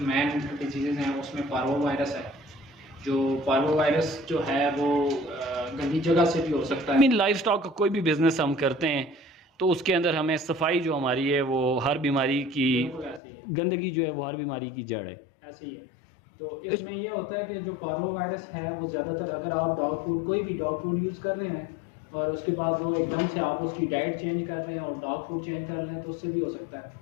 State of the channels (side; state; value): right; drops out; at 13.2 s